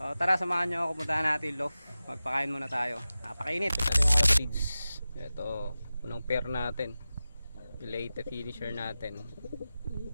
tara, samahan nyo ako, puntahan natin loft. Magpakain muna tayo. Napakainit. Ito yung mga feeds. Ito, unang pair natin. Leyte finisher natin.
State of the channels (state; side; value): inverted; both; correlation -0.95